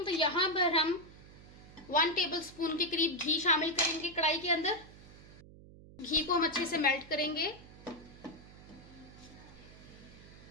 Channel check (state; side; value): noise; right; hum, 19 dB below the sound